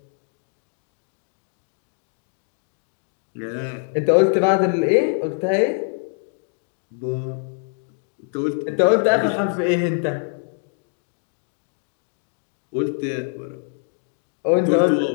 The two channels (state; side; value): silent; right; 63 dB below the other